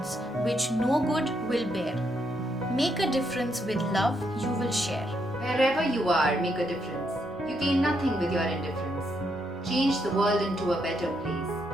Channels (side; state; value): both; normal; correlation 0.77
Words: which no good will bear. Make a difference with love you will share. Wherever you are, make a difference. You gain nothing with your indifference. Change the world into a better